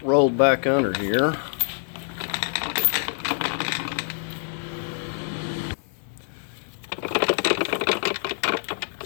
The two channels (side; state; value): right; silent; digital silence